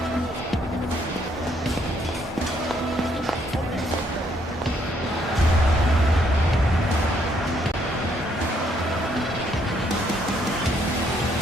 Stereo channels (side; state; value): both; normal; correlation 0.70